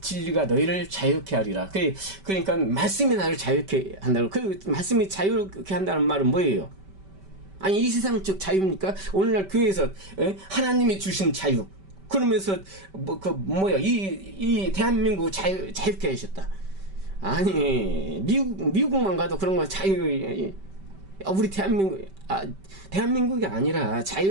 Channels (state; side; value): late; left; 5.2 ms